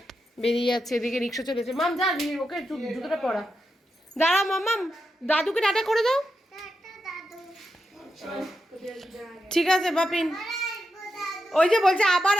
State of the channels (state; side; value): normal; both; correlation 0.86